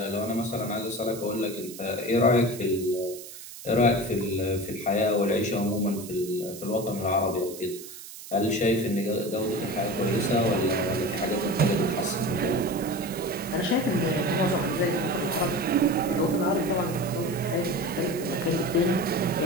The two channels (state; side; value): noise; right; hiss, 14 dB below the sound